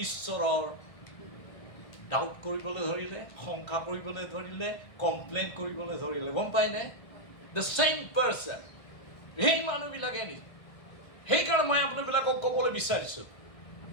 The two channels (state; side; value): late; right; 1.3 ms